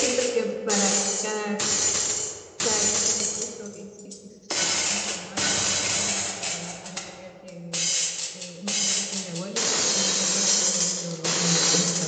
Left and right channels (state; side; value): identical; both; correlation 1.00